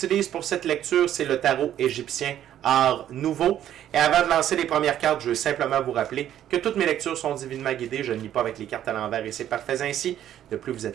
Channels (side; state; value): left; quieter; 11.2 dB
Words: pour cette lecture, c'est le tarot égyptien Art Nouveau. Et avant de lancer les premières cartes, je veux simplement vous rappeler que toutes mes lectures sont divinement guidées. Je ne lis pas avec les cartes à l'envers et c'est parfait ainsi. De plus, vous